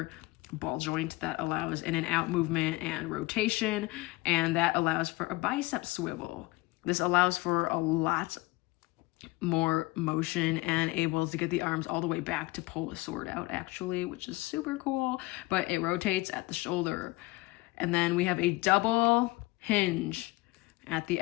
ball joint that allows in and out movement and rotation, and that allows for a bicep swivel. This allows for a lot more motion and able to get the arms all the way back to pull a sword out, actually, which is super cool, but it rotates at the shoulder. And then we have a double hinge at the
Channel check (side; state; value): right; quieter; 21.2 dB